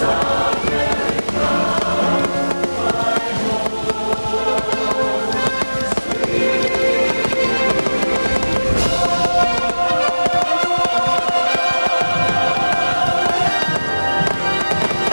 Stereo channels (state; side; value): inverted; both; correlation -1.00